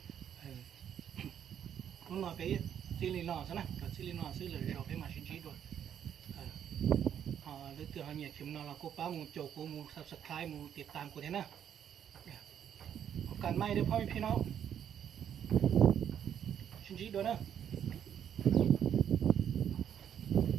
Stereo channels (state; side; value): quieter; left; 9.2 dB